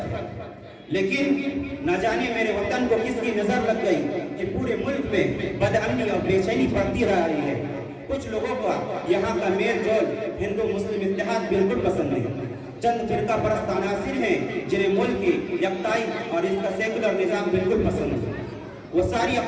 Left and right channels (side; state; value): both; identical; correlation 1.00